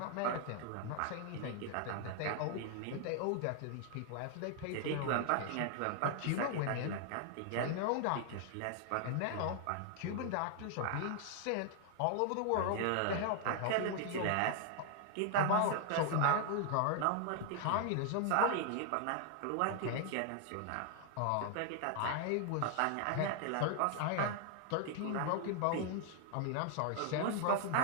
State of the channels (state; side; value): different; both; correlation 0.00